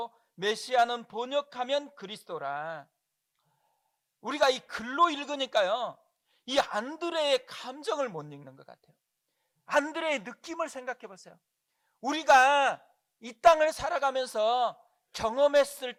메시아는 번역하면 그리스도라. 우리가 이 글로 읽으니까요, 이 안드레의 감정을 못 읽는 것 같아요. 안드레의 느낌을 생각해 보세요. 우리가 이 땅을 살아가면서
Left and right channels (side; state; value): both; identical; correlation 1.00